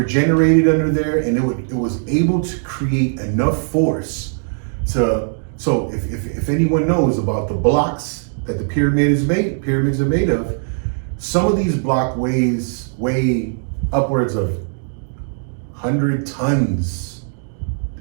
generated under there, and it was able to create enough force to. So if anyone knows about the blocks that the pyramids are made of, some of these block weigh upwards of 100 tons.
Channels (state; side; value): silent; left; digital silence